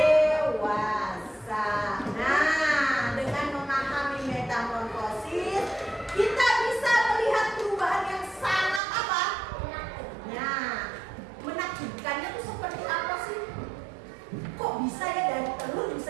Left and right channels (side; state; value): left; drops out; at 8.8 s